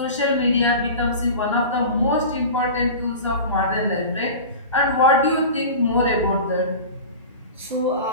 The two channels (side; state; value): both; inverted; correlation -0.33